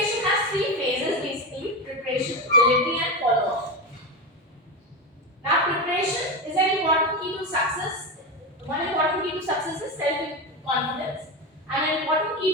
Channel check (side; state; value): both; normal; correlation 0.17